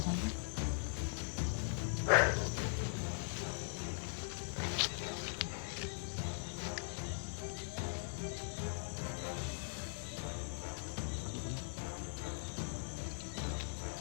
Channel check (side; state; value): right; silent; digital silence